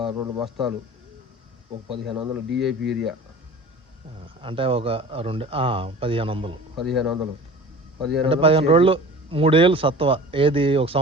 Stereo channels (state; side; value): normal; both; correlation 0.40